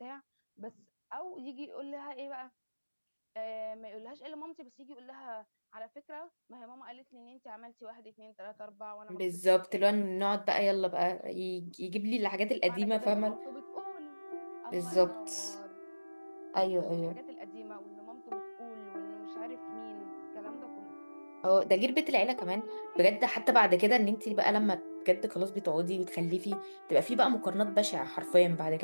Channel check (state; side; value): inverted; both; correlation -1.00